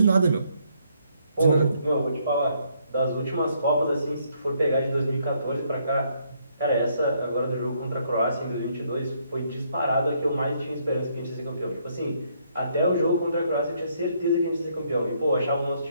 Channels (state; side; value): inverted; both; correlation -0.71